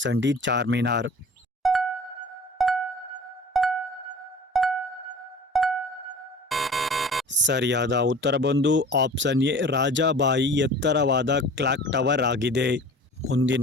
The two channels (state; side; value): normal; both; correlation 0.42